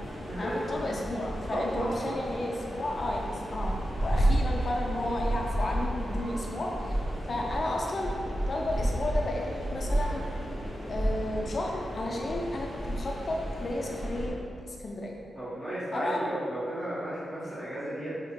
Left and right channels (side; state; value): both; normal; correlation 0.91